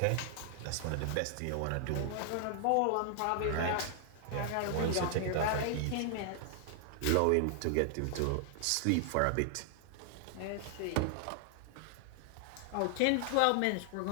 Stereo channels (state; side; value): different; both; correlation 0.00